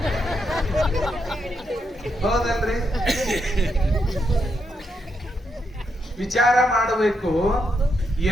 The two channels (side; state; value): both; normal; correlation 0.81